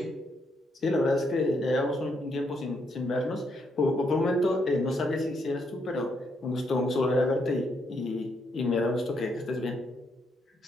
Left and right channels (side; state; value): both; normal; correlation 0.76